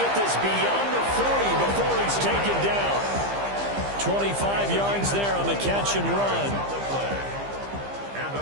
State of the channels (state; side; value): late; left; 15 ms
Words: this beyond the 40 before he's taken down. 25 yards there on the catch and run. And